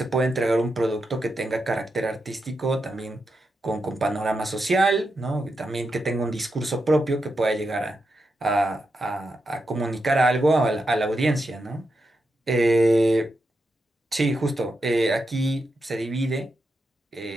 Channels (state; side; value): normal; both; correlation 0.86